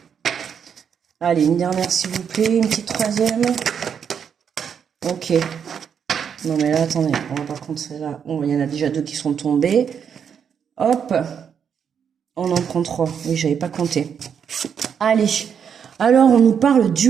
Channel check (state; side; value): quieter; left; 7.5 dB